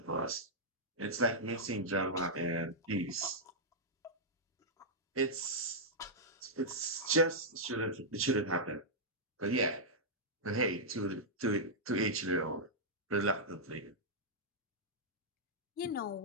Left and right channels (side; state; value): both; normal; correlation -0.08